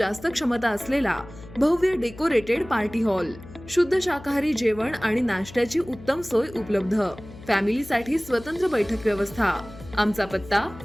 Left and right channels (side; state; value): left; noise; hum, 17 dB below the sound